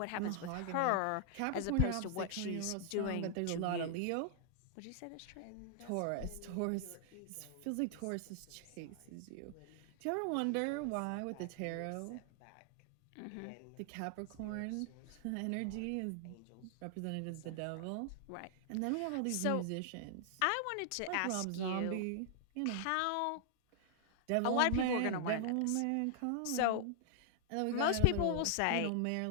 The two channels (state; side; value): different; both; correlation -0.01